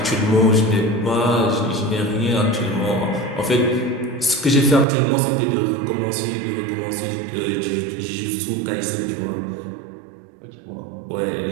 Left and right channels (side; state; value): left; drops out; at 4.9 s